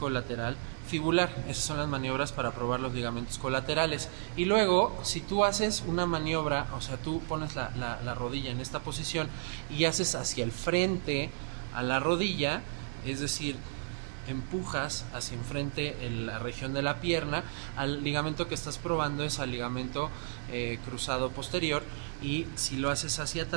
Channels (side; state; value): left; silent; digital silence